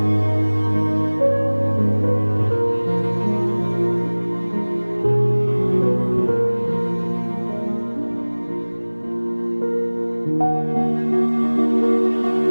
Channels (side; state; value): both; inverted; correlation -1.00